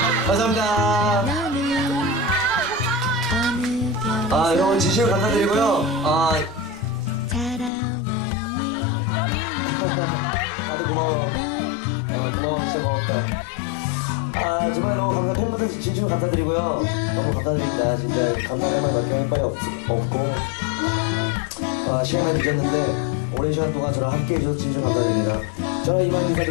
감사합니다. 여러분 진심으로 감사드리고요. 다들 고마워. 고마워, 진짜 고맙다. 정말로 팬분들 진심으로 감사드리고요. 너무 감사드립니다. 진짜 감사할 말밖에 할 말이 없고 시간이 많이 늦었는데 오랜 시간 동안 저랑 함께 해주셔서 진심으로 감사드립니다. 저는 이만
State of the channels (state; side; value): drops out; right; at 7.7 s